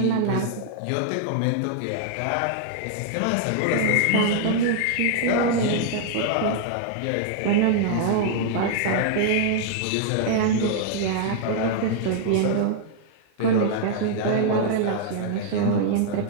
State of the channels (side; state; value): both; different; correlation -0.01